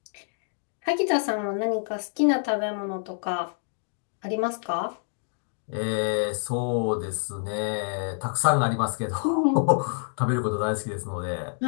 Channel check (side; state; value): right; silent; digital silence